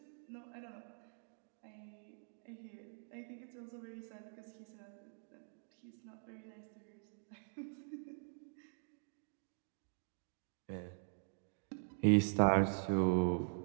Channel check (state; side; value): silent; left; digital silence